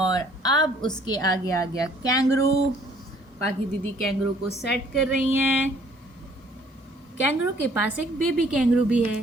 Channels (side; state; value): both; normal; correlation 0.59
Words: अब उसके आगे आ गया कैंगरू। पाखी दीदी कैंगरू को सेट कर रही हैं। कैंगरू के पास एक बेबी कैंगरू भी है।